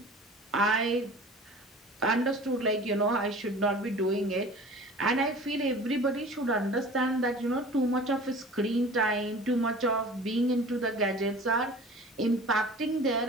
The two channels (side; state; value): both; normal; correlation 0.42